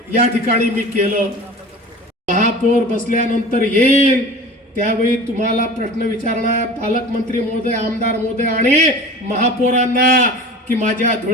या ठिकाणी मी केलं. महापौर बसल्यानंतर येईल त्यावेळी तुम्हाला प्रश्न विचारणार पालकमंत्री महोदय, आमदार महोदय आणि महापौरांना की माझ्या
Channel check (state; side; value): normal; both; correlation 0.38